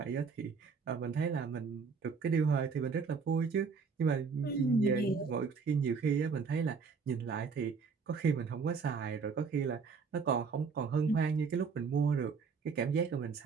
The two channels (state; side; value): quieter; left; 5.4 dB